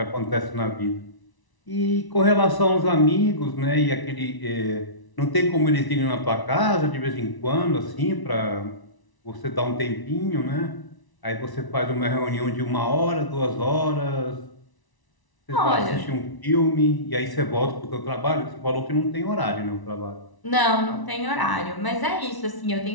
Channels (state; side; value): late; right; 1.0 ms